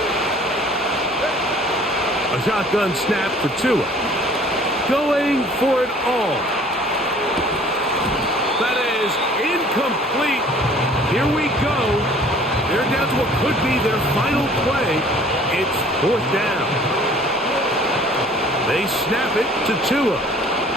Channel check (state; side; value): normal; both; correlation 0.52